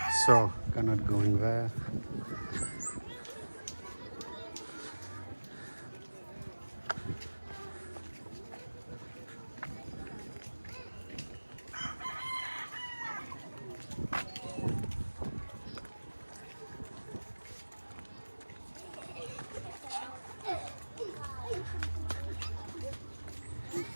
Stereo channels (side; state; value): both; inverted; correlation -1.00